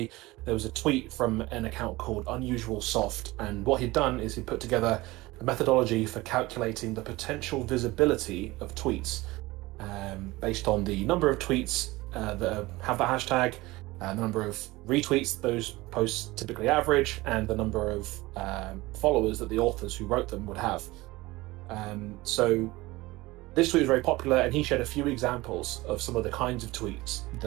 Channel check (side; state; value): left; quieter; 20.3 dB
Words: There was a tweet from an account called Unusual Soft, and what he'd done is he put together a methodology for calculating the potential visibility of tweets based on the number of tweets that have that hashtag, the number of retweets those posts typically average, and the number of followers that the authors who wrote them would have. So this tweet was very popular, and he shared a few examples of some of the kinds of tweets